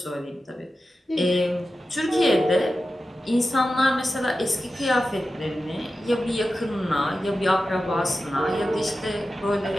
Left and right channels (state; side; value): normal; both; correlation 0.93